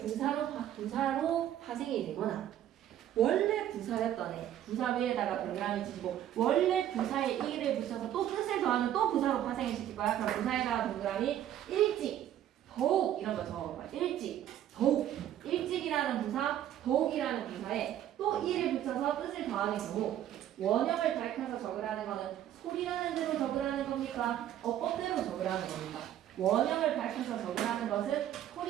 파생이 되거나, 원래 부사였던 애 부사 위에다가 동그라미 치시고 원래 부사에 이를 붙여서 또 뜻을 더하는 또 부사로 파생을 시킬 거야. 그럼 부사에다가 동그라미 일찍, 더욱 이런 거 적어봐. 일찍, 더욱. 일찍이라는 부사, 더욱이라는 부사에 또 이를 붙여서 뜻을 더하는 경우, 원형을 밝혀서 적으라는 거는 소리나는 대로 적으라는 겁니까? 어법대로 적으라는 겁니까? 원형을 밝혀서 적으라는 것은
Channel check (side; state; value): left; quieter; 11.6 dB